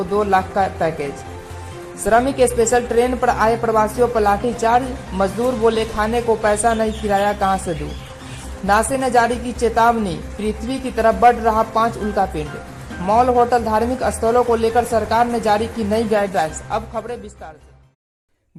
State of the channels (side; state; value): both; identical; correlation 1.00